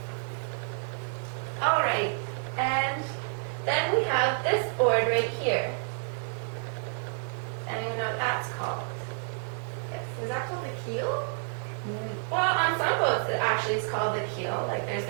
Alright, and then we have this board right here. Anyone know what that's called? Yes. Is that called the keel? Well, on some boats it actually is called the keel. Like there's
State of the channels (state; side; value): silent; left; 58 dB below the other